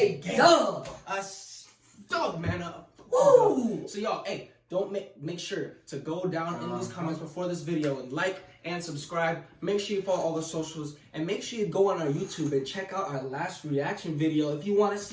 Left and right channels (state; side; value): identical; both; correlation 1.00